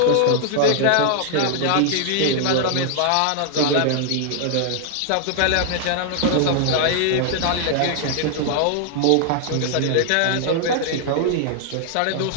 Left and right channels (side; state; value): both; different; correlation 0.00